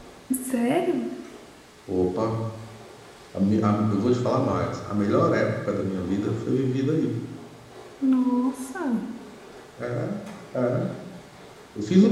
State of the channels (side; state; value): both; identical; correlation 1.00